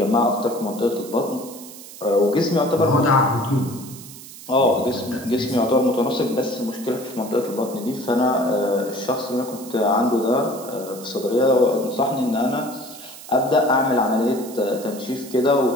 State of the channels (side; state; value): right; noise; hiss, 16 dB below the sound